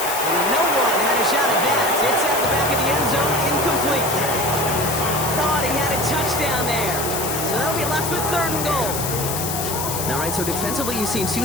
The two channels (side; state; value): left; noise; hiss, 4 dB below the sound